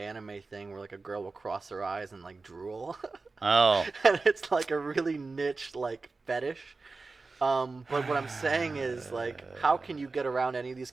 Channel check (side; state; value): left; quieter; 3.9 dB